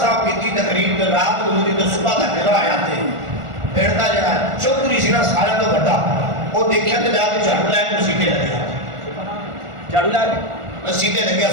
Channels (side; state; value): left; late; 1.4 ms